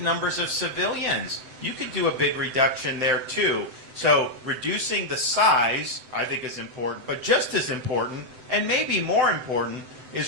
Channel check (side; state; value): left; late; 7.8 ms